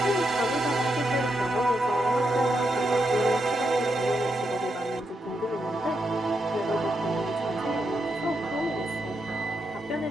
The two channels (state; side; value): normal; both; correlation 0.83